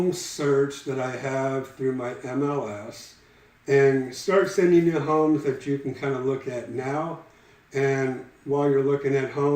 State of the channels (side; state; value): both; identical; correlation 1.00